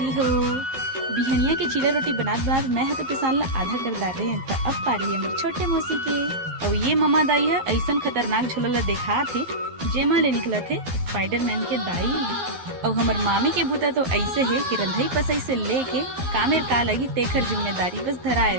हो। बिहनिया के चीला रोटी बनात मैं तो पिसान ला आधा कर डाले त अब पारी है मेरे छोटे मौसी के। और ये ममा दाई है ऐसा खतरनाक झोला ला देखा थे जेमा ले निकला थे स्पाइडरमैन के दाई। और हमर मामी के बूता तो ऐसे है कि रंधई पसई से लेके कामेर का लगी तेखर जिम्मेदारी बस धराए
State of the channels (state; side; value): late; left; 12 ms